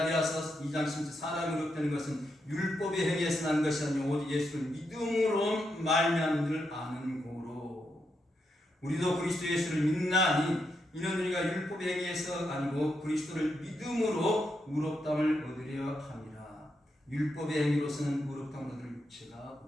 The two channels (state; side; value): normal; both; correlation 0.82